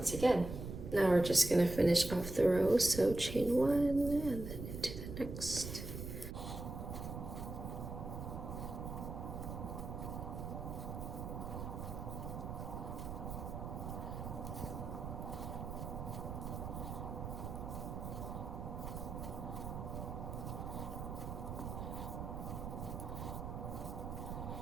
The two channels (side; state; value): right; noise; rumble, 6 dB below the sound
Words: again. Now we're just gonna finish off the row. So chain 1 and then into the next.